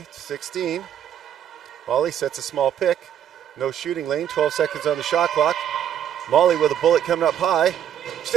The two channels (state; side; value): quieter; left; 9.9 dB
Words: 16. Molly sets a small pick. No shooting lane, 12 seconds on the shot clock. Molly with a bullet coming up high.